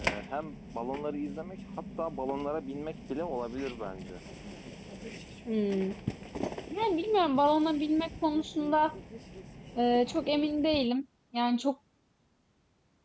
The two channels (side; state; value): both; identical; correlation 1.00